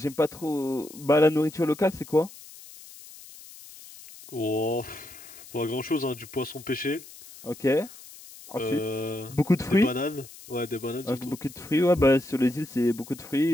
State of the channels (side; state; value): left; noise; hiss, 18 dB below the sound